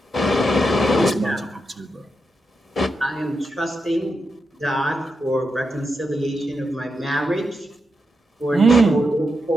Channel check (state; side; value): normal; both; correlation 0.86